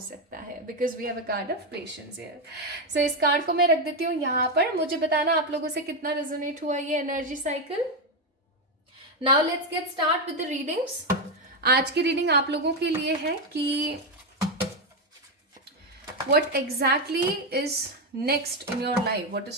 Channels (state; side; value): normal; both; correlation 0.08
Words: है, because we have a card of patience here. So इस कार्ड को मैं रख देती हूँ यहाँ पर। मुझे बताना आप लोगों से कितना रेजोनेट हुआ ये energy cycle. Now let's get start with the readings. आज की रीडिंग आप लोगों के लिए है कि what exactly is next in your life, what is